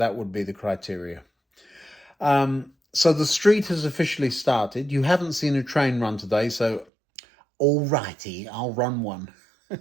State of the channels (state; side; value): drops out; left; at 6.9 s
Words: would be the criteria. So the street has officially started. You haven't seen a train run today, so alrighty, I'll run one.